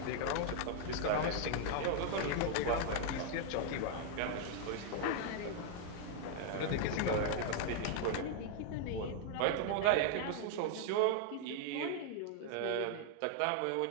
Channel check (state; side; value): different; both; correlation 0.00